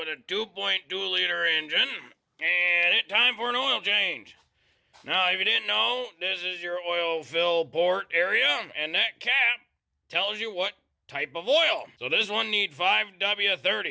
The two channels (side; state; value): both; identical; correlation 1.00